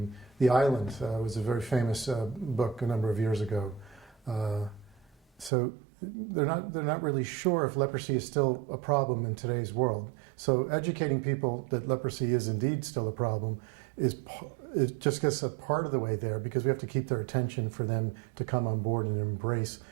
The Island was a very famous book a number of years ago. So they're not really sure if leprosy is still a problem in today's world. So educating people that leprosy is indeed still a problem it just gets a part of the way there, because we have to keep their attention for them to come on board and embrace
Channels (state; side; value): drops out; left; at 5.5 s